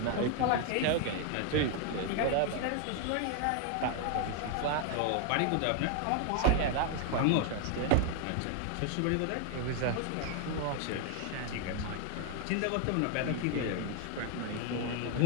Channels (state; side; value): different; both; correlation 0.00